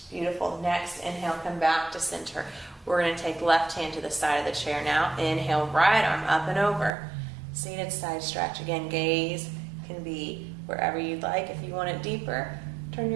Beautiful. Next, inhale, come back to center. We're going to take left hand to the side of the chair now. Inhale, right arm up and over. Seated side stretch. Again, gaze can be wherever you'd like. If you want it deeper, turn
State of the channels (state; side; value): drops out; left; at 6.9 s